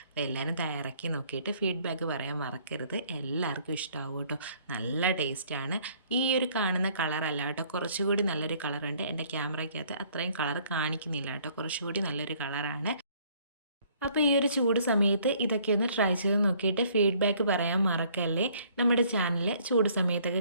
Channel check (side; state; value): both; inverted; correlation -0.61